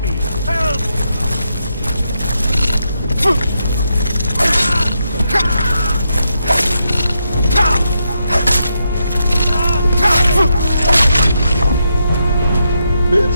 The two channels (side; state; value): both; inverted; correlation -0.82